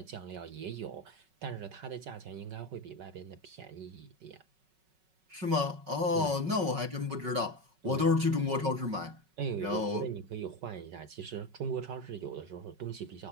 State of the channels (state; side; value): late; left; 5.4 ms